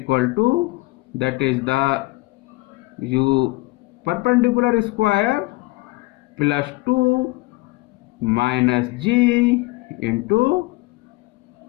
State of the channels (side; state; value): right; quieter; 23.0 dB